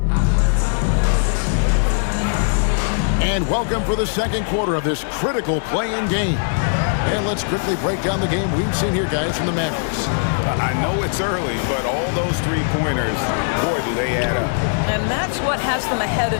And welcome for the second quarter of this critical play-in game. And let's quickly break down the game we've seen here, guys, from the Mavericks. I know it's early, but all those three-pointers, boy, do they add up. And that's what has them ahead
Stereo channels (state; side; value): silent; right; digital silence